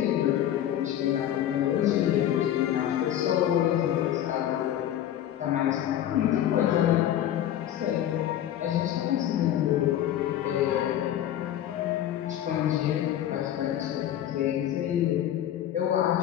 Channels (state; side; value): quieter; right; 11.5 dB